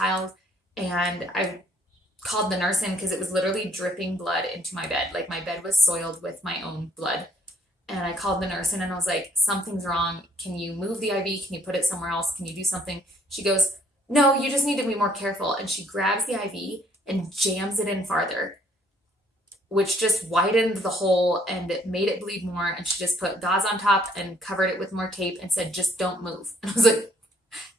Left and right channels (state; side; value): normal; both; correlation 0.63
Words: And I called the nurse in because it was literally dripping blood into my bed. Like, my bed was soiled with my own blood. And I called the nurse in and I was like, something's wrong. Can you move the IV? Can you put it somewhere else? Can you do something? She goes, no, you just need to be more careful. And she grabs the IV and jams it in farther. which just widened the hole and it made it bleed more. And she just put gauze on top and covered it with more tape and said, just don't move. And I was like,